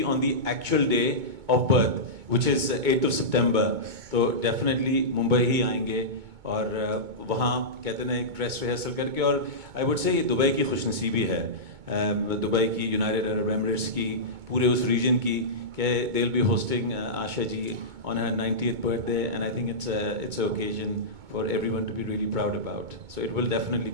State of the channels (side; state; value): left; late; 2.2 ms